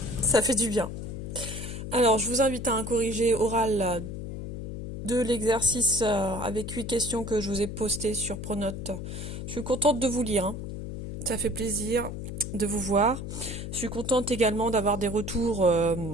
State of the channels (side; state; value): left; noise; hum, 7 dB below the sound